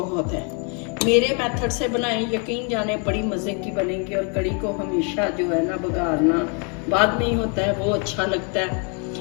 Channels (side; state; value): right; quieter; 36.4 dB